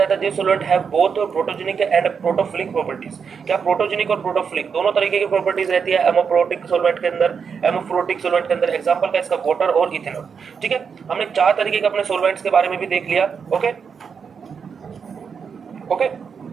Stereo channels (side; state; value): left; quieter; 6.3 dB